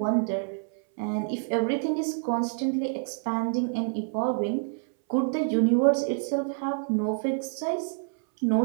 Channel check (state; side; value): silent; left; 60 dB below the other